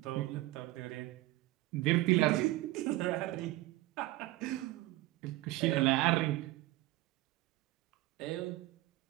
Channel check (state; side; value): quieter; left; 18.1 dB